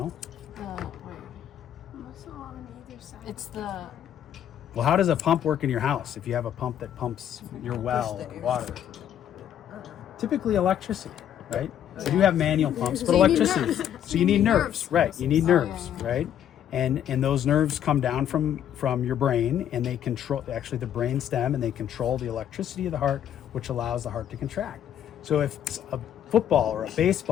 Wait. Muscle on either side. It's the. Well, how does a pump work in your house if you have a pump that pumps your well or water? Typically electricity, right? We do have manual pumps, but electricity. So you need nerves, right? You need nerves, right? And those nerves come down from your brain, and they control actually the brain stem, and they control the electricity of the heart, which allows the heart to contract. So if a football or a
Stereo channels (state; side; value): quieter; right; 10.1 dB